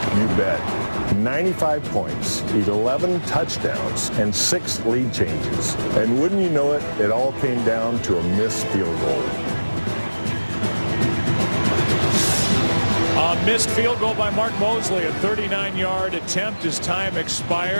You bet. 95 points, 11 touchdowns, and 6 lead changes. And wouldn't you know it, it all came down to a missed field goal. A missed field goal by Mark Mosley, a 39-yard attempt as time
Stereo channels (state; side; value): inverted; both; correlation -1.00